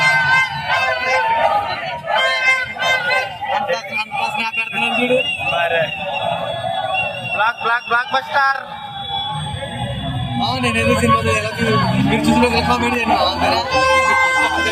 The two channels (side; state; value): both; identical; correlation 1.00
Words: Block buster. నేను ఏదో సినిమా మీరు చూసిన కామెడీ